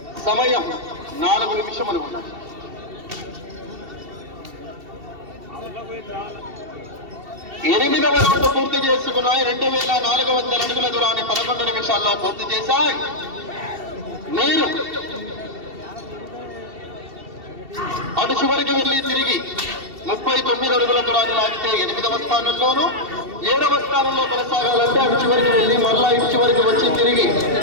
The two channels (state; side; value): late; left; 2.7 ms